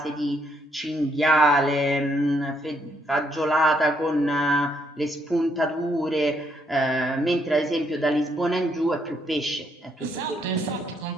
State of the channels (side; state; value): both; normal; correlation 0.73